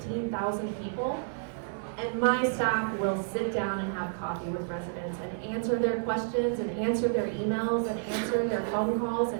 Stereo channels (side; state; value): left; silent; 58 dB below the other